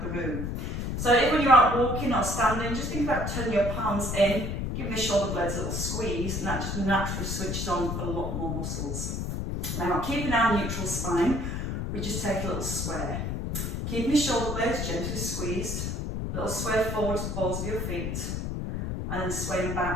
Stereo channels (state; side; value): noise; left; rumble, 2 dB below the sound